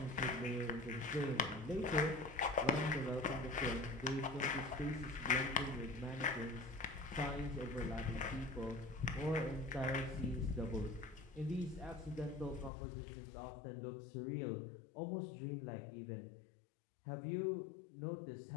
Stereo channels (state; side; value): drops out; right; at 12.7 s